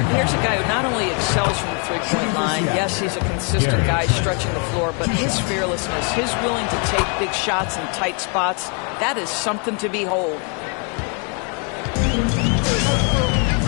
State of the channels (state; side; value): quieter; right; 37.9 dB